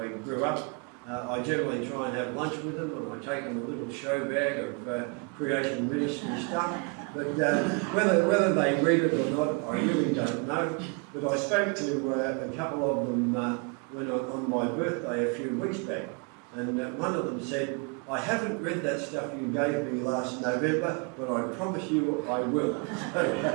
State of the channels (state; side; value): quieter; left; 33.0 dB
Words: grew up, I generally try and have lunch with them, and I take them a little show bag of Creation Ministries stuff. But whether they read it or not, I really don't know. But I spoke to a couple of them on my birthday a few weeks back, and one of them said, "I haven't read that stuff you gave me last November, but I promise you I will."